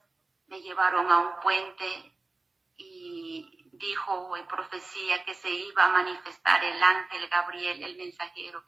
me llevaron a un puente y dijo en profecía que se iba a manifestar el ángel Gabriel, el mensajero,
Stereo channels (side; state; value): left; quieter; 3.4 dB